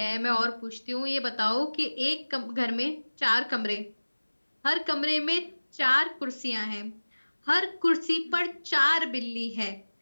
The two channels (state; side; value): inverted; both; correlation -1.00